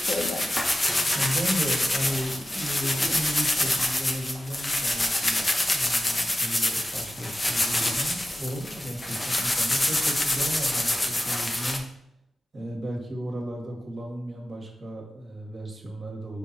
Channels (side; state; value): both; normal; correlation 0.93